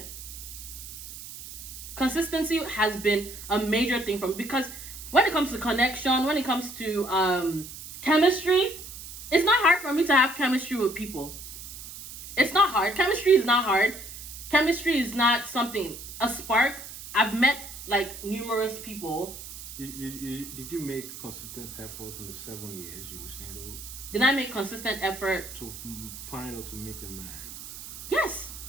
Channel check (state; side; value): noise; right; hiss, 12 dB below the sound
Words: Consistency has been a major thing for me because when it comes to connection, when it comes to chemistry, it's not hard for me to have chemistry with people. It's not hard. Chemistry is not hard. Chemistry is not something, a spark. I've met like numerous people. Did you make consistent efforts in the 7 years you were single? Did I make consistent effort to find or to meet a man? Yes.